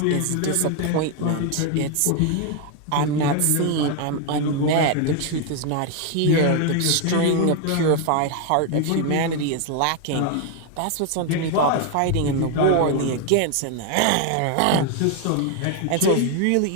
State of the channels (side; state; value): both; different; correlation 0.01